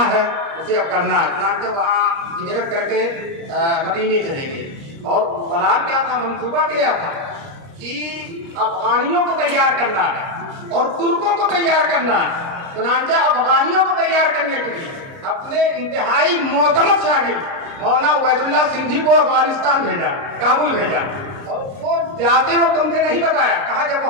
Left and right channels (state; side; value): late; left; 29 ms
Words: है उसे अब करना है। चुनांचे वहाँ हिजरत करके मदीने चले गए, और बलार क्या था, मंसूबा किया था कि अफगानियों को तैयार करना है और तुर्कों को तैयार करना है। चुनांचे अफगानियों को तैयार करने के लिए अपने इंतहाई मोतमद शागिर्द मौलाना उबैदुल्लाह सिंधी को अफगानिस्तान भेजा, काबुल भेजा, और वो जाते वक्त तुमसे नहीं बताया, कहा जब